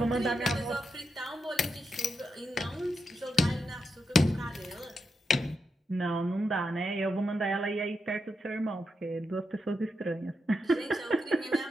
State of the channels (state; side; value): normal; both; correlation 0.86